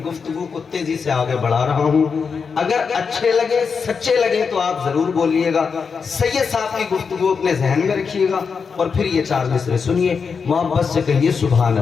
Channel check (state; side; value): quieter; right; 5.7 dB